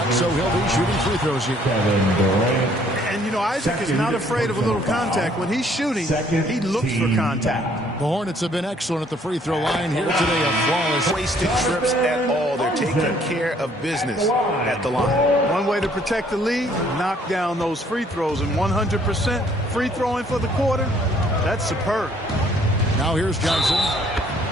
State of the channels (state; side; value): normal; both; correlation 0.62